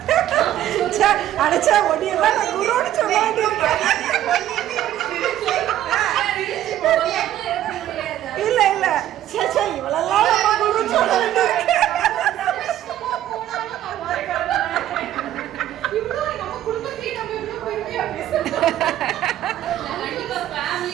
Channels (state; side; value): quieter; left; 12.5 dB